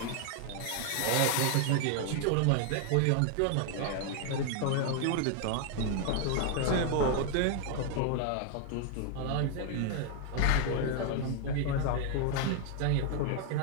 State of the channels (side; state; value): both; different; correlation 0.00